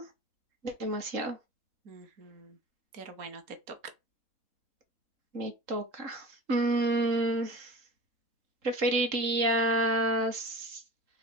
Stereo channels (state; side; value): late; left; 3.8 ms